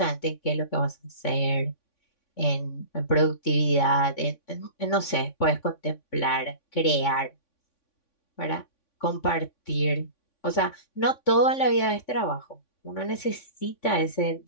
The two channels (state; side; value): late; right; 3.5 ms